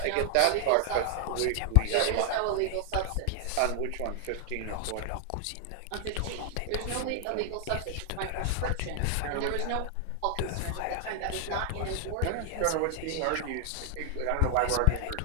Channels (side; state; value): both; different; correlation 0.00